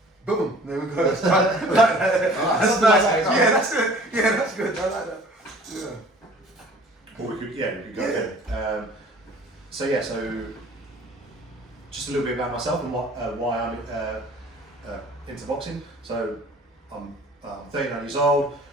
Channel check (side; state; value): both; normal; correlation 0.49